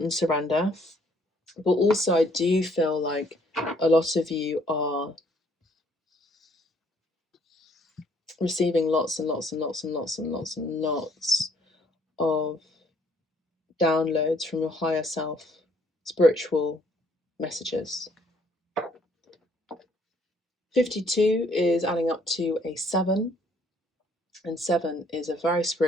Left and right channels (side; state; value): both; normal; correlation 0.64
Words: surrender, but also I do feel like a lot of you are receiving lots and lots and lots and lots and lots and lots of downloads from your higher self, spiritual messages. 52 is adding up to a 7, and 7 is a very